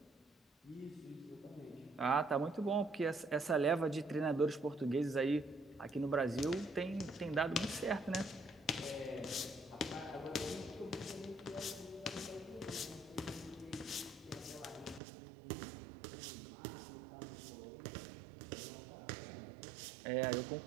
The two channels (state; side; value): drops out; left; at 15.0 s